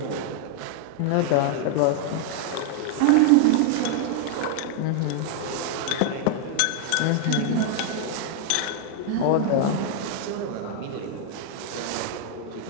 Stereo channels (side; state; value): both; different; correlation 0.00